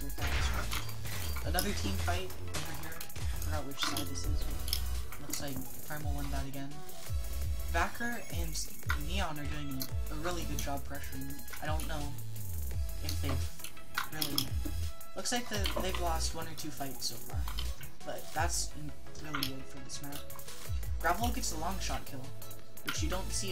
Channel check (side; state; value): both; identical; correlation 1.00